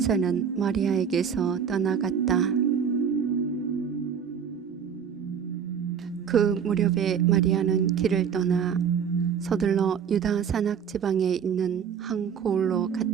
마리아에게서 떠나갔다. 그 무렵에 마리아는 길을 떠나 서둘러 유다 산악 지방에 있는 한 고을로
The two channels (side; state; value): left; quieter; 7.4 dB